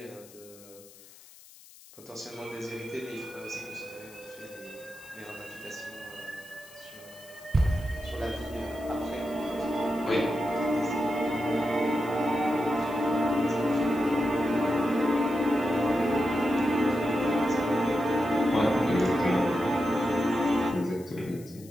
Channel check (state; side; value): noise; left; hiss, 22 dB below the sound